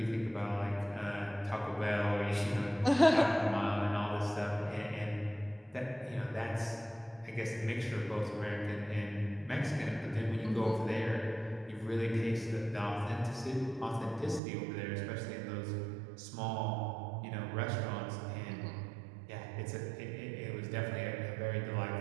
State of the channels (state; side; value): drops out; left; at 14.4 s